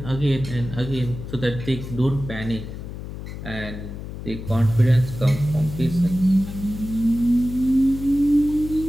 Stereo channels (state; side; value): noise; left; hum, 9 dB below the sound